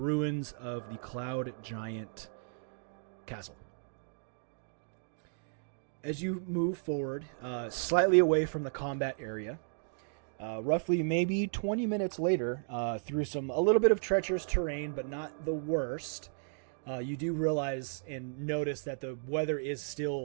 of the Cloud Giant Castle. As you move forward, slightly away from the combat area, roughly maybe 20 minutes later, through a little bit of treacherous terrain, but not the worst, you do realize and notice that the weather is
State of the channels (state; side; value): silent; left; digital silence